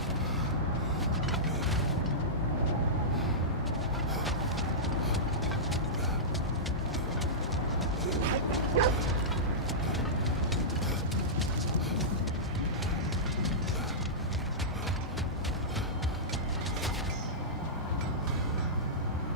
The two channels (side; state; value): both; normal; correlation -0.15